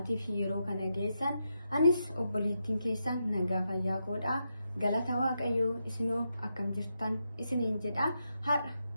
fi yeroo kana geessan anis obboleettiin keessan nagaa fayyaa godha galata waaqayyoo isinoo akkam jirtan isiniin jedha har'a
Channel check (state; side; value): inverted; both; correlation -0.85